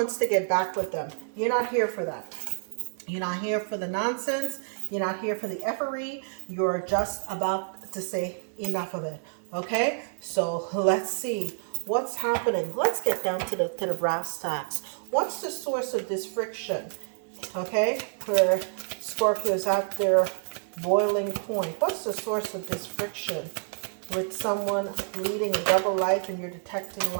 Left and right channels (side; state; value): left; silent; 58 dB below the other